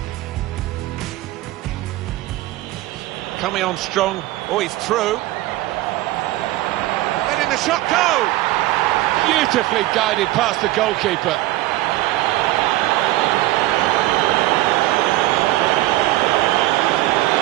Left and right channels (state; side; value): quieter; left; 17.3 dB